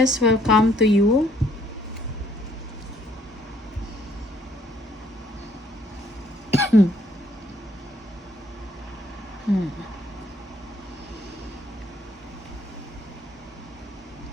will come to you.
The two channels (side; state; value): both; normal; correlation 0.65